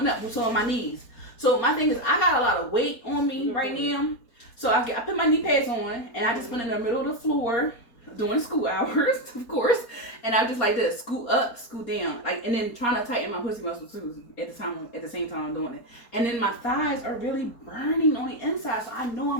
up, so on my knees. So my thing is, I got a lot of weight on me right now. So I put my knee pads on, and I just went in the middle of the floor during school hours, of course, and I just like this, scoot up, scoot down, like, and then trying to tighten my pussy muscles too at the same time I'm doing it. And then my thighs are really burning on the inside, so I know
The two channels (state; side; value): late; right; 4.2 ms